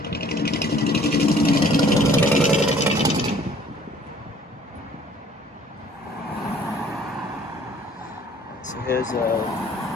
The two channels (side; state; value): both; normal; correlation 0.55